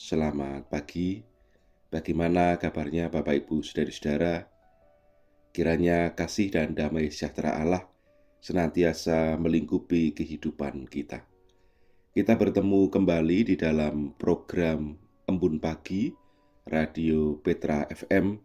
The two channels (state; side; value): identical; both; correlation 1.00